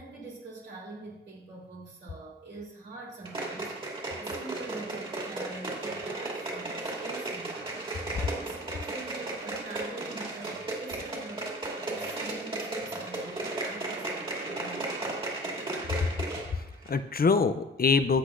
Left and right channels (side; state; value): both; normal; correlation 0.41